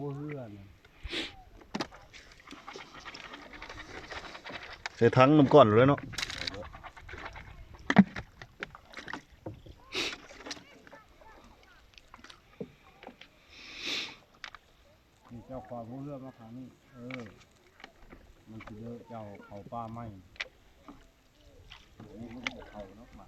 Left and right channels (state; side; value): identical; both; correlation 1.00